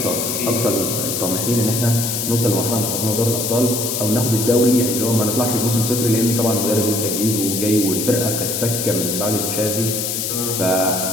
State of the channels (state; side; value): noise; left; hiss, 2 dB below the sound